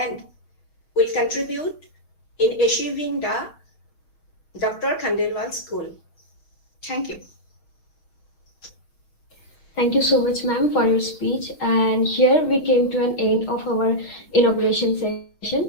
will contribute in achieving the Dr. Khandelwal's goal. Thank you. Thank you so much, ma'am, for your speech. And here we came to an end of our inauguration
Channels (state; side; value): late; right; 6.5 ms